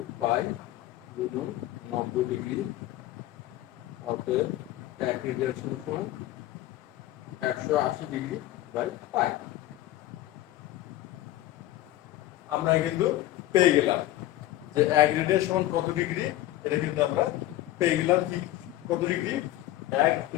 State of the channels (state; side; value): quieter; right; 14.9 dB